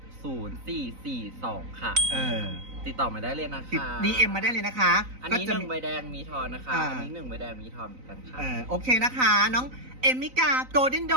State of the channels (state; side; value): late; left; 3.9 ms